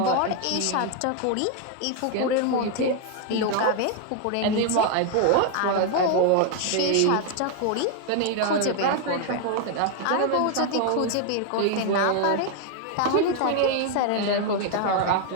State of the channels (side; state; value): both; different; correlation 0.00